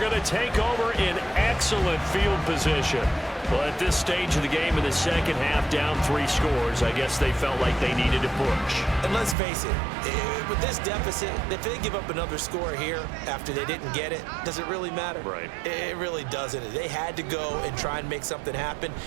to take over in excellent field position. Well, at this stage of the game in the second half, down 3 scores, I guess they felt like they needed to push. And let's face it, with this deficit, if they give up another score here after they didn't get it, does it really matter? Right. It really doesn't. They had to go and try and make something happen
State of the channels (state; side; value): drops out; left; at 9.3 s